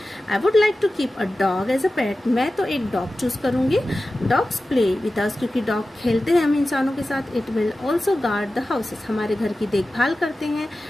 I would like to keep a dog as a pet, मैं तो एक डॉग चूज करूंगी। डॉग्स प्ले विद अस, क्योंकि डॉग खेलते हैं हम इंसानों के साथ। It will also guard the houses, हमारे घर की देखभाल करते हैं।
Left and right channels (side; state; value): both; normal; correlation 0.95